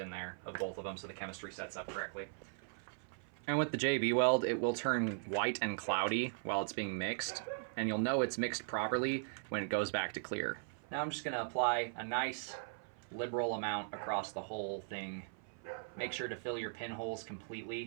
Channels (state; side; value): silent; left; 52 dB below the other